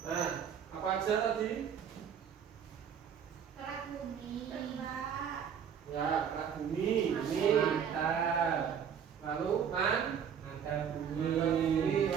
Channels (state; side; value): quieter; left; 7.9 dB